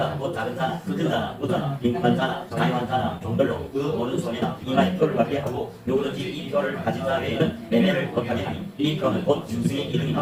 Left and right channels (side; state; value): both; identical; correlation 1.00